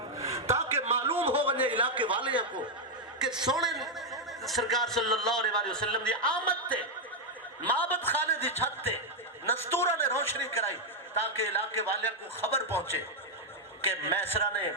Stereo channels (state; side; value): normal; both; correlation 0.01